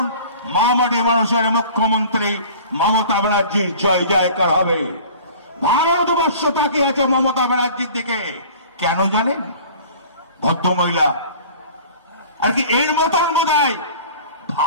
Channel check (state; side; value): inverted; both; correlation -0.44